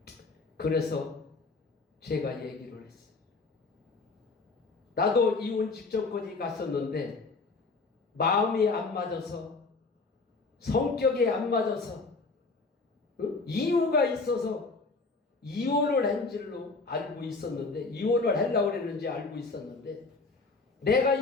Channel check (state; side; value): quieter; right; 3.9 dB